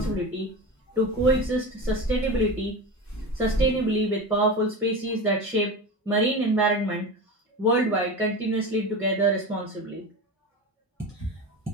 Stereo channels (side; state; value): both; normal; correlation 0.26